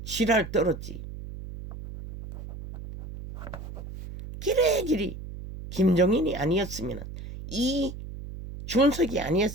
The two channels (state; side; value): noise; right; hum, 11 dB below the sound